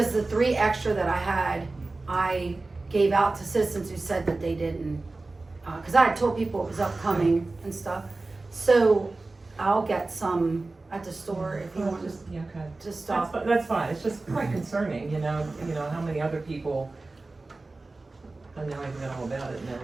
the 3 extra that I had, I gave out to citizens who said that they didn't, because I had told people it was upcoming and stuff. So I'll get some at the store if you Well, want just, yeah, okay. to stop. That's fine, it's just quite concerning, how many other people, I know I know all about it,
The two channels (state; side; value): quieter; left; 3.3 dB